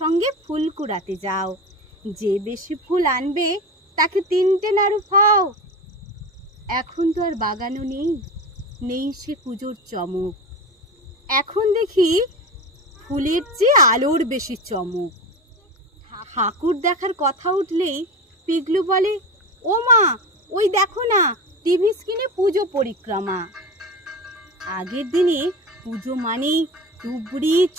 ফুল কুড়াতে যাও, যে বেশি ফুল আনবে তাকে 3টে নাড়ু খাও। এখন তো আর বাগানও নেই, নেই সে পুজোর চমক। এখন দেখি ফুলের চেয়ে আলোর বেশি চমক। ঠাকুর দেখার কথা উঠলেই পিগলু বলে, ও মা, ওই দেখো না টিভি স্ক্রিনে পুজো পরিক্রমা। আগের দিনে পুজো মানেই তুবড়ি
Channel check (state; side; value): normal; both; correlation 0.26